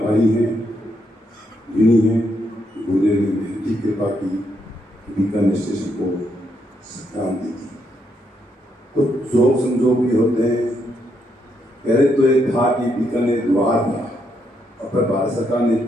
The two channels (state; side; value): normal; both; correlation 0.78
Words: हैं, ऋणी हैं। गुरुदेव ने बेहद कृपा की, बीकानेर स्टेशन को क्रांति की। कुछ जोग संजोग भी होते हैं। पहले तो ये था कि बीकानेर द्वार था, और फिर भारत सरकार ने